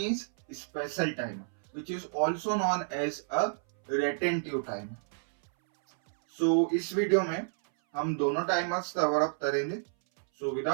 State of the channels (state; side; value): silent; left; 58 dB below the other